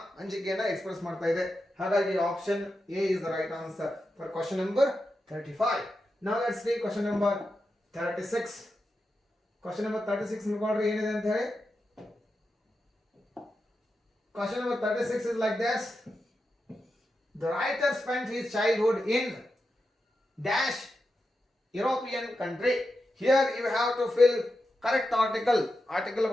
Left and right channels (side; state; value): both; normal; correlation 0.89